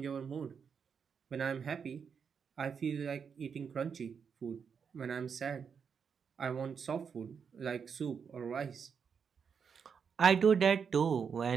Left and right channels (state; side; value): quieter; left; 6.5 dB